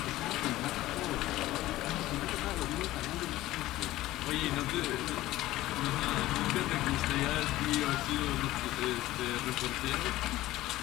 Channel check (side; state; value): right; quieter; 16.3 dB